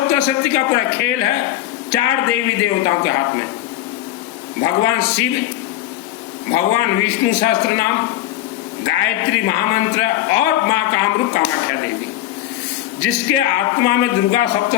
का पूरा खेल है 4 देवी देवताओं के हाथ में, भगवान शिव, भगवान विष्णु सहस्त्र नाम, गायत्री महामंत्र और मां कामरूप कामाख्या देवी। जिसके आत्मा में दुर्गा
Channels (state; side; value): quieter; right; 13.9 dB